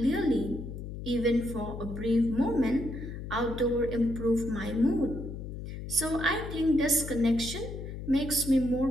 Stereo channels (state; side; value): noise; left; hum, 8 dB below the sound